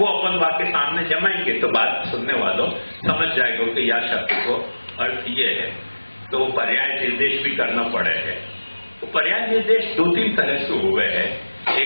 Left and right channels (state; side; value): inverted; both; correlation -1.00